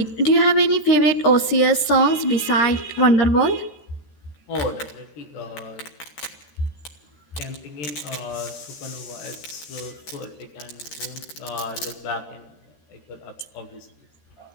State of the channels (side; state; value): right; late; 13 ms